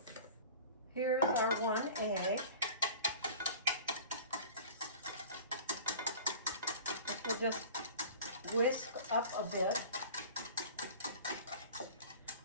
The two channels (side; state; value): both; inverted; correlation -0.41